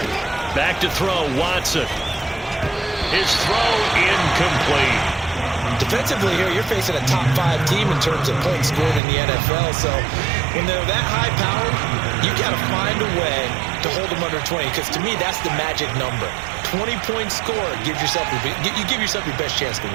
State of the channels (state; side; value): drops out; left; at 9.0 s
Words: Back to throw, Watson. His throw incomplete. Defensively here, you're facing a top 5 team in terms of points scored in the NFL. So when they're that high powered, you got to find a way to hold them under 20. Because to me, that's the magic number. 20-point score gives yourself you give yourself your best chance to